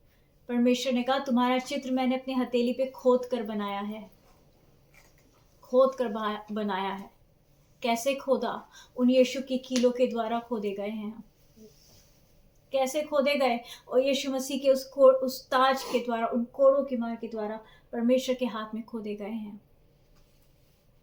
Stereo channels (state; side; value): identical; both; correlation 1.00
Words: परमेश्वर ने कहा तुम्हारा चित्र मैंने अपनी हथेली पे खोद कर बनाया है, खोद कर बनाया है। कैसे खोदा? उन यीशु की कीलों के द्वारा खोदे गए हैं। कैसे खोदे गए? और यीशु मसीह के उस ताज के द्वारा, उन कोड़ों की मार के द्वारा परमेश्वर के हाथ में खोदे गए हैं।